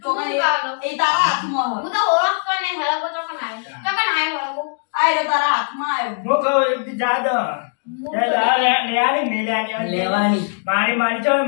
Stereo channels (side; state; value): right; silent; digital silence